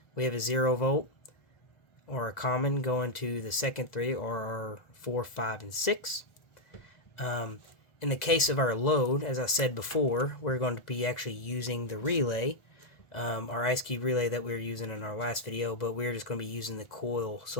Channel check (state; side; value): late; right; 1.4 ms